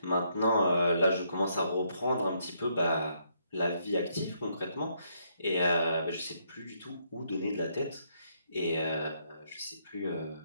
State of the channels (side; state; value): both; inverted; correlation -0.73